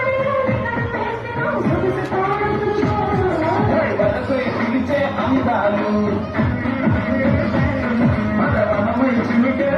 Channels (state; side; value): identical; both; correlation 1.00